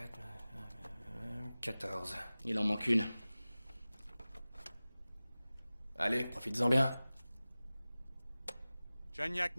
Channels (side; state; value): both; inverted; correlation -0.97